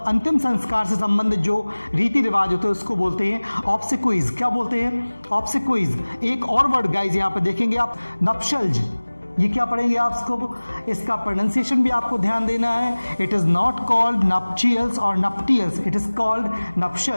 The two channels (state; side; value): inverted; both; correlation -1.00